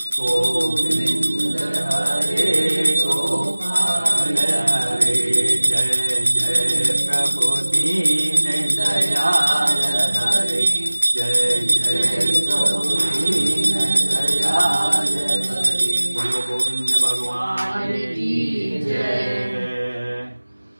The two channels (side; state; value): both; inverted; correlation -1.00